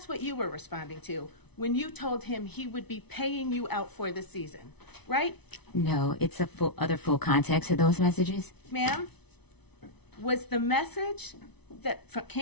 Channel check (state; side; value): late; right; 0.99 ms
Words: what you were responding to when you told him he would be paying you out for the season, right? No, it's a full context of those messages. Ma'am, was the message that